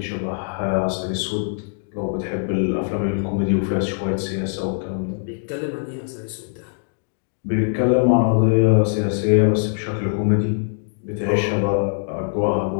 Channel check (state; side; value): silent; right; digital silence